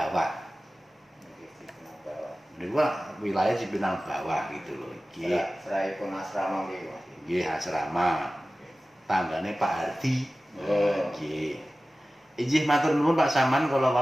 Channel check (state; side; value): normal; both; correlation 0.96